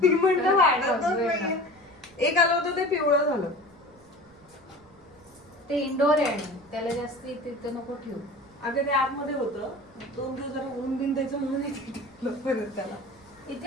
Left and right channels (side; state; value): right; noise; rumble, 29 dB below the sound